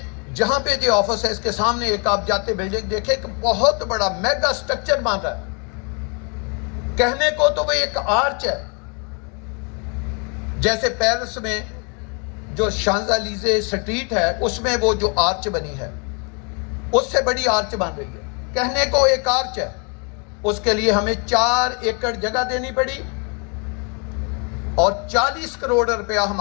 جہاں پہ جو آفس ہے اس کے سامنے ایک آپ جاتے بلڈنگ دیکھیں کہ بہت بڑا میگا سٹرکچر بن رہا ہے. کہنے کو تو وہ ایک آرچ ہے، جیسے پیرس میں جو شانزالیزے سٹریٹ ہے اس میں وہ جو آرچ بنی ہے اس سے بڑی آرچ بن رہی ہے. کہنے کو ایک آرچ ہے، اس کے لیے ہمیں 4 ایکڑ جگہ دینی پڑی اور 40 کروڑ روپیہ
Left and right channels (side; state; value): right; quieter; 35.5 dB